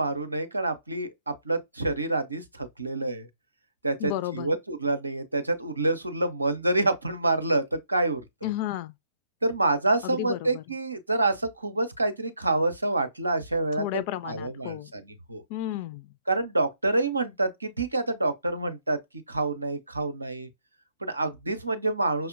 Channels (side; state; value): both; inverted; correlation -0.75